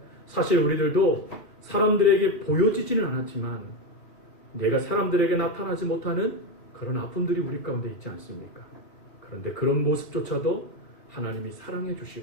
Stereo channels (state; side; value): late; right; 2.4 ms